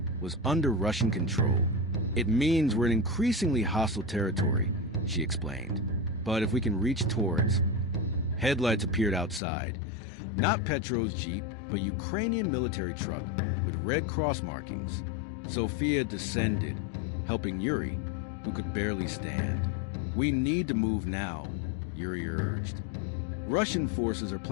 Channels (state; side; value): drops out; right; at 9.4 s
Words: was under Russian control. "It means we're in increasingly hostile territory," she explained. "But if we can reach Donetsk..." Headlights appeared outside. Not Petro's Jeep, but Ukrainian military truck with Red Cross markings. Sophia descended, helping Yuri, who could barely stand. "We need to move now," Yuri urged. Russian forces are